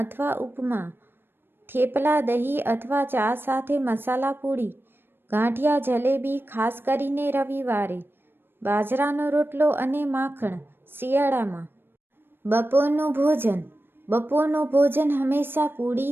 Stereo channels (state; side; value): late; left; 0.10 ms